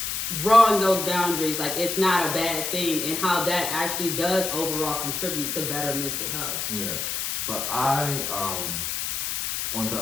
drawing those boundaries, like it's not a bad thing, and how that actually does overall contribute to better mental health. Yeah, but I, on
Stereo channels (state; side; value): noise; left; hiss, 2 dB below the sound